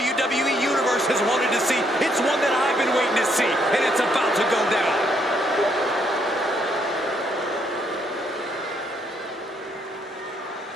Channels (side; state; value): both; normal; correlation 0.72